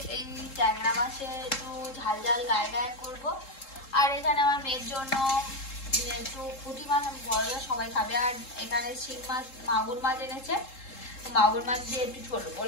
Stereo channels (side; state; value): right; late; 3.7 ms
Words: এই ট্যাংরা মাছে একটু ঝাল ঝাল গায়ে গায়ে করবো। আর এখানে আমার মেয়ের জন্য একটু পুঁটি মাছ, বড় সবাই খাবে। আর এখানে শিং মাছ, মাগুর মাছ এনেছে, মাগুর মাছ দিয়ে একটু ছোট